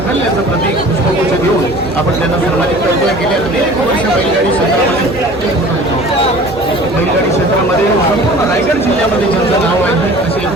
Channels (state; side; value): normal; both; correlation 0.44